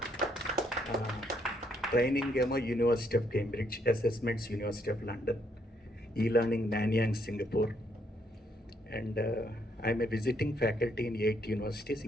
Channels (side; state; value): both; normal; correlation 0.72